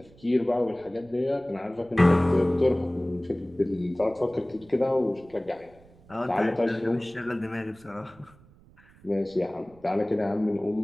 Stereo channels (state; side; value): noise; right; rumble, 26 dB below the sound